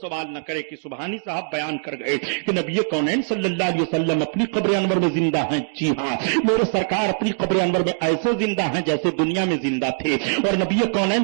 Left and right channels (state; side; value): silent; left; digital silence